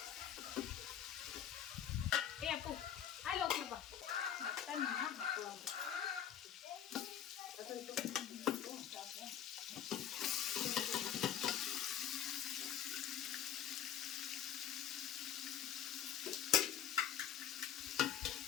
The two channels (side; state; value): right; quieter; 9.7 dB